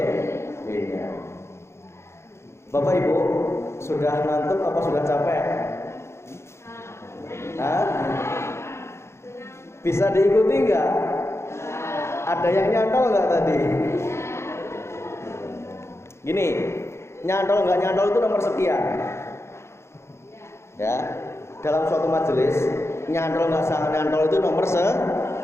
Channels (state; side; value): late; right; 0.13 ms